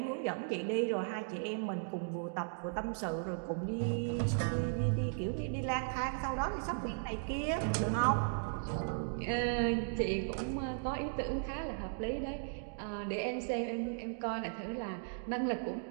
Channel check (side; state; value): left; silent; digital silence